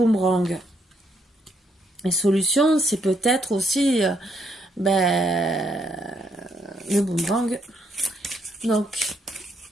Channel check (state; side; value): normal; both; correlation 0.74